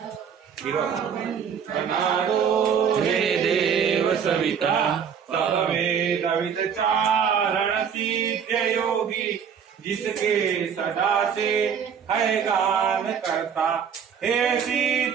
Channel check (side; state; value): left; quieter; 7.4 dB